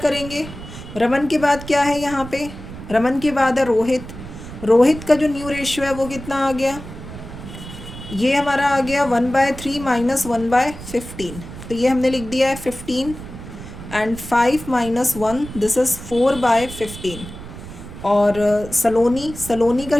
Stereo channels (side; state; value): right; noise; rumble, 13 dB below the sound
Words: रमन के बाद क्या है यहाँ पे? रमन के बाद है रोहित का जो न्यू रेशियो है वो कितना आ गया? ये हमारा आ गया 1/3 - 1/15। तो ये हमने लिख दिया है 15 एंड 5 - 1, दिस इज़ 4/15। और सलोनी का